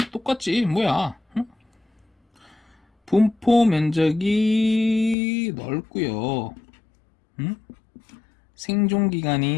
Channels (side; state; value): right; drops out; at 5.2 s